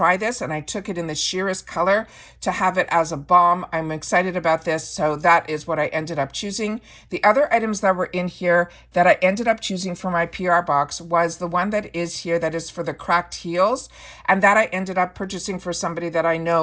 this. And I took it in the sheerest color to have it as a balm. I'm excited about this. So that is what I ended up choosing. The other items that were in here that I ended up choosing for my PR box was the one that is here that is for the cracked heels. And that I ended up purchasing for somebody that I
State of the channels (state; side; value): identical; both; correlation 1.00